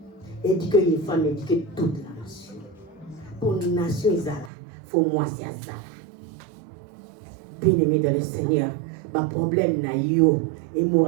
éduquer une femme éduquer toute la nation pour une nation izala faut moi c'est azala bien aimé dans le Seigneur ba problème na yo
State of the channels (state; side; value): drops out; left; at 4.5 s